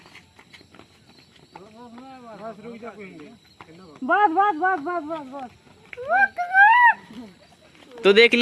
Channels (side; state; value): both; identical; correlation 1.00